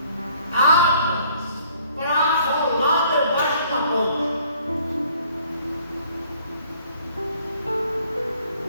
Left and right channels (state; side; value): inverted; both; correlation -0.59